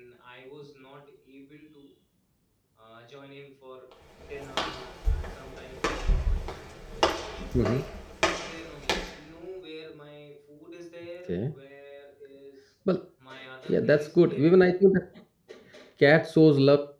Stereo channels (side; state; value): both; identical; correlation 1.00